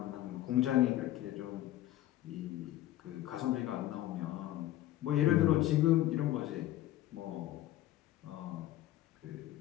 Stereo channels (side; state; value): right; quieter; 14.5 dB